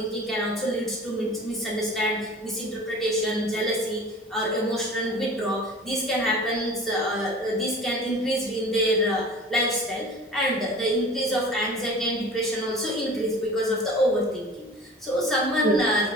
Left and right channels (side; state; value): both; normal; correlation 0.42